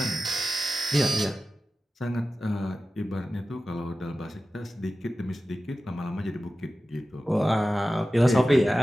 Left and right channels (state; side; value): normal; both; correlation 0.94